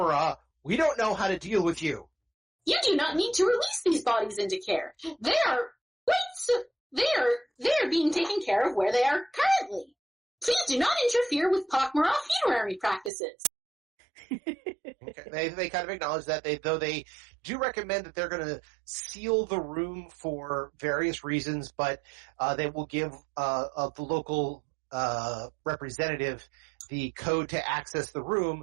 we don't know how to deal with you. You do not need to release these bodies into care. They're being taken care of where they are currently. Please do not interfere with pak'ma'ra funerary practices. Okay. They kind of acknowledge that, though they do recommend that they're going to seal the room for various reasons, but they will give the local representative the code to access the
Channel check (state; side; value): drops out; left; at 13.1 s